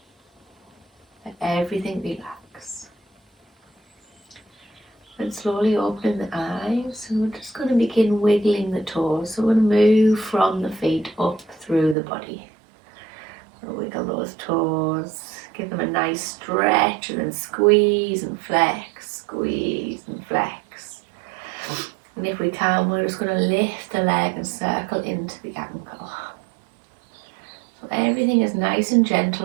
Let everything relax. And slowly opening the eyes, and we're just going to begin wiggling the toes. So we're going to move from the feet up through the body. So wiggle those toes, give them a nice stretch, and then squeeze and flex, squeeze and flex. And if we can, we're just going to lift the leg and circle into the ankle. So everything is nice and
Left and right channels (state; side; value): drops out; left; at 12.0 s